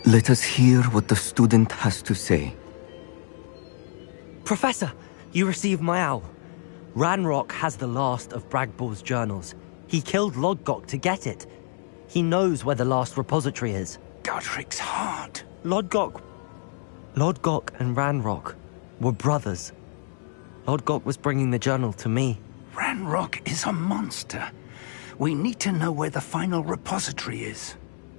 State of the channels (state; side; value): silent; right; 61 dB below the other